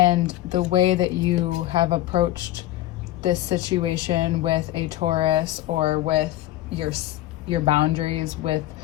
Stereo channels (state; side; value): quieter; right; 14.7 dB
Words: the way that you have approached this situation with a Taurus, or with your boundaries, with